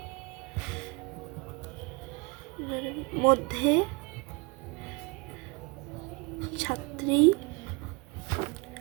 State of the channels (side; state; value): left; quieter; 27.2 dB